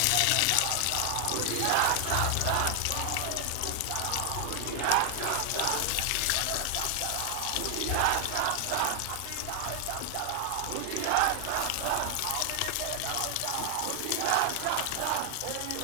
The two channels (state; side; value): different; both; correlation 0.00